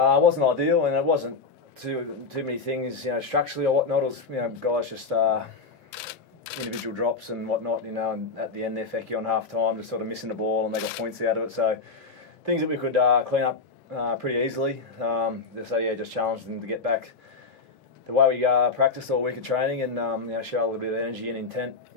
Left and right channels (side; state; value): right; quieter; 4.4 dB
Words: wasn't ideal, and it wasn't too many things, structurally or whatnot. It was, guys just individual drops and whatnot, and at the end there, Fecky on half time, just sort of missing the ball, and they got points out of it. So things that we could clean up pretty easily. So yeah, just challenged them to get back the way we practiced all week of training, and show a little bit of energy and intent